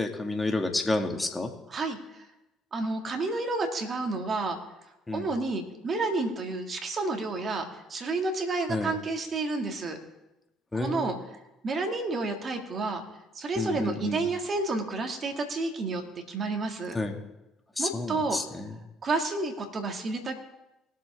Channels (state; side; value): normal; both; correlation 0.68